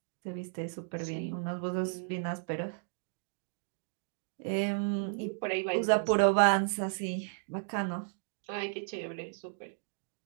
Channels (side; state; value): left; silent; digital silence